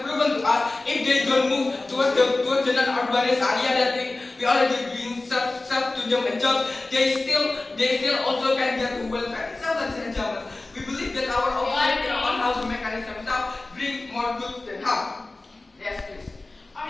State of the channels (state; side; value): quieter; right; 3.1 dB